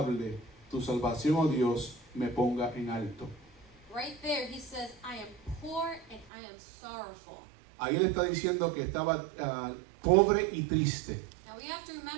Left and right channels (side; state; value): left; drops out; at 6.3 s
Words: tu salvación, oh Dios, me ponga en alto. Right there, he says, I am poor and I am sorrowful. Ahí él está diciendo que estaba pobre y triste. Now we have to